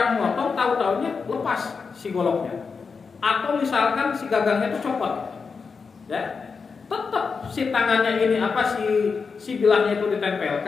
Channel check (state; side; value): quieter; right; 5.2 dB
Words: memotong tahu-tahunya lepas si goloknya, atau misalkan si gagangnya itu copot, ya tetap si tangannya ini si bilahnya itu